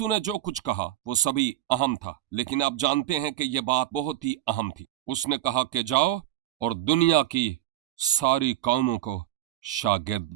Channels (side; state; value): left; quieter; 13.9 dB